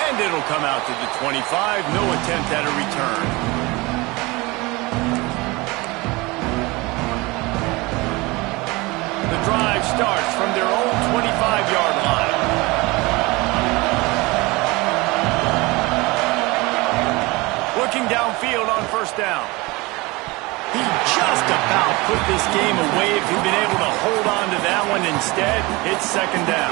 And it'll come out to the 25. No attempt at a return. The drive starts from their own 25-yard line. Looking downfield on first down. He just about put this game away if he'd been able to hold on to that one. Instead, it's second down.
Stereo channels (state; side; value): quieter; left; 23.5 dB